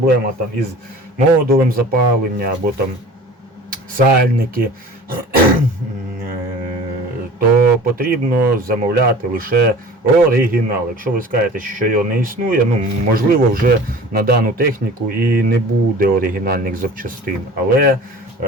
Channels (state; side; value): normal; both; correlation 0.42